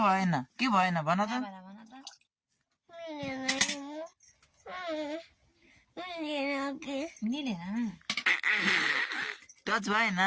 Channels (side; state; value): both; identical; correlation 1.00